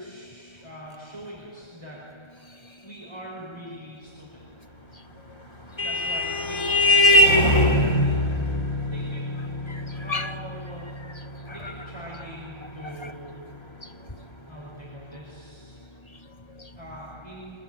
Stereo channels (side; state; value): right; late; 1.3 ms